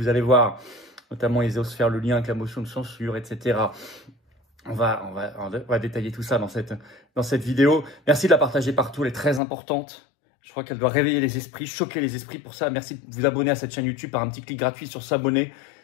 allez voir. Notamment, ils osent faire le lien avec la motion de censure, etc. On va détailler tout ça dans cette vidéo. Merci de la partager partout, elle est très importante. Je crois qu'elle doit réveiller les esprits, choquer les esprits. Pour ça, merci de vous abonner à cette chaîne YouTube par un petit clic gratuit sur s'abonner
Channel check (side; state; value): right; drops out; at 9.4 s